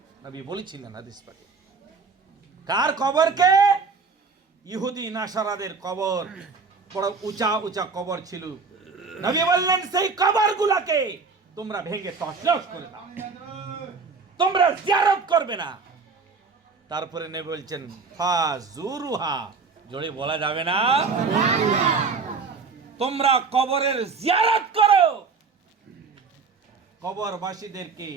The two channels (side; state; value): left; quieter; 4.8 dB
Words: নবী বলেছিলেন হাদিস পাকে। কার কবরকে? ইহুদি নাসারাদের কবর, বড় উঁচা উঁচা কবর ছিল। নবী বললেন সেই কবরগুলোকে তোমরা ভেঙে তছনছ করে দাও, তোমরা জিয়ারত করবে না। তারপরে নবী বলছেন ফাজুরুহা, জোরে বলা যাবে না, তোমরা কবরের জিয়ারত করো, কবরবাসীদেরকে